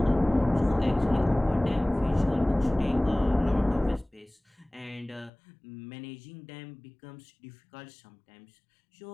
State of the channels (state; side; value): drops out; right; at 5.3 s